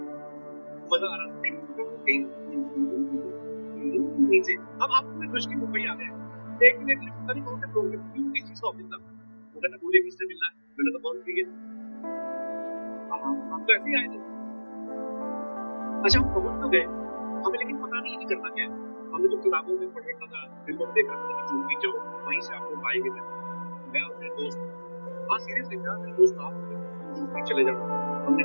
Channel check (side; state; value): both; inverted; correlation -1.00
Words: मजा आ रहा था। नीचे अब आपको मैं खुश की मुंबई आ गए, एक मिनट लिफ्ट पता नहीं कौन से फ्लोर पे, क्योंकि चीज का ऑफिस था, वो कहता बोले किससे मिलना है, मैंने तो कौन फ्री है, हम तो ऐसे ही आए थे। अच्छा, हम पहुंच तो गए, हमें लेकिन पता नहीं करना क्या है। हमने तो किताबों में पढ़ रखा था, फिल्मों में देख रखा था कि जो भी जाओ वहीं से आपको पाएंगे। मैं और मेरे दोस्त, हाँ सीरियसली था, मेरे दोस्त आप जो भी चले जाओ, हमने